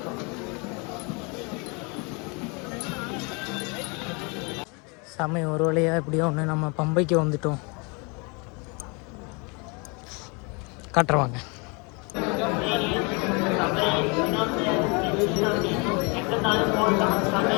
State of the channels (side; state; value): right; quieter; 31.2 dB